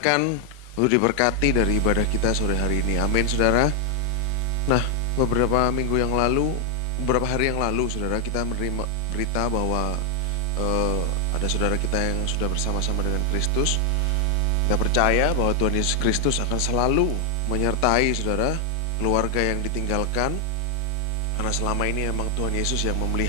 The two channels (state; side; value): normal; both; correlation 0.01